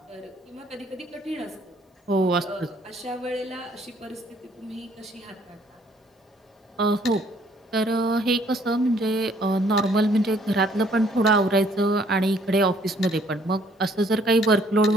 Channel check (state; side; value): normal; both; correlation 0.63